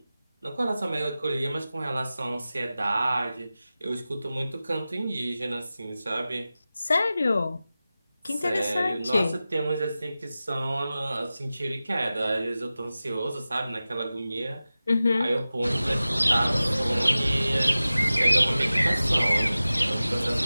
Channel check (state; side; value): inverted; both; correlation -0.95